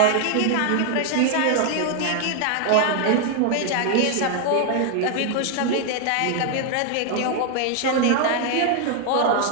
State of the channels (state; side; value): different; both; correlation 0.00